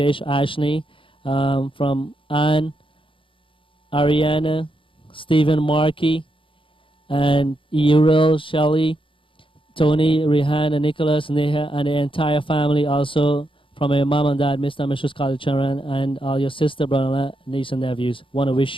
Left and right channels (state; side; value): late; right; 0.25 ms